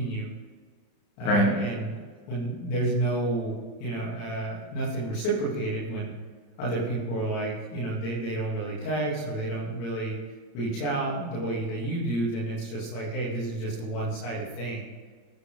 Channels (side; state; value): right; late; 34 ms